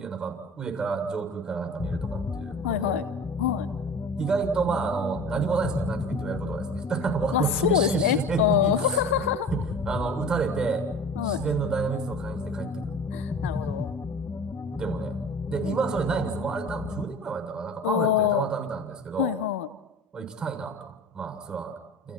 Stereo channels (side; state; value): both; normal; correlation 0.39